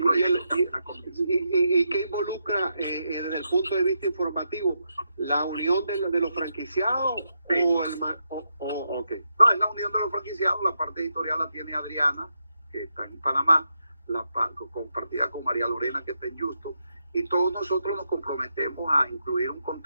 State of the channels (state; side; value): inverted; both; correlation -0.83